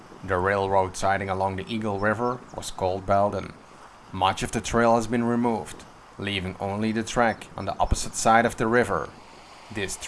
The railroad siding along the Eagle River was called Belden. Much of the trail has been removed, leaving only the track on the opposite side of the river. This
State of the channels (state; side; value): identical; both; correlation 1.00